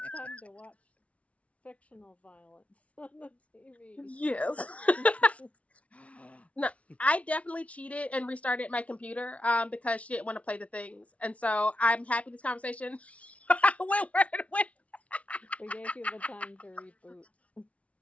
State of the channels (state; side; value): late; right; 0.065 ms